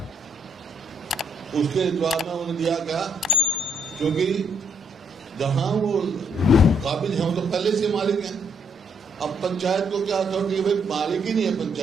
उसके जवाब में उन्होंने दिया क्या, क्योंकि जहां वो काबिल है तो पहले से मालिक हैं। अब पंचायत को क्या अथॉरिटी है, भाई मालिक ही नहीं है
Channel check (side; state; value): both; normal; correlation 0.70